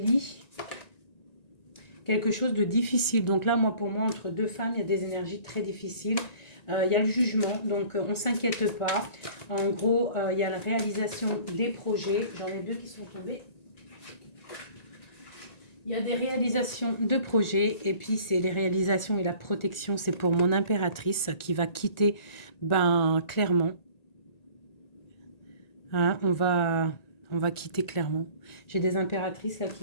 Quelque chose de difficile. Donc là, pour moi, entre deux femmes, il y a des énergies très difficiles. Il y a le jugement, donc on ne s'inquiète pas. En gros, il y a la réalisation des projets. J'en ai deux qui sont tombés. Il y a des réalisations de projets. Et puis, c'est les réalisations et la protection. C'est pour mon impératrice qui va quitter, clairement. Hein, on va quitter clairement. J'ai des impératrices là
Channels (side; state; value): right; late; 1.9 ms